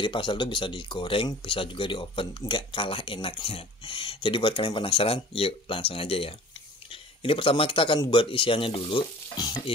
pastel tuh bisa digoreng, bisa juga di oven. Nggak kalah enaknya. Jadi buat kalian penasaran, yuk langsung aja ya. Ini pertama kita akan buat isiannya dulu.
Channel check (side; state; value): both; normal; correlation 0.45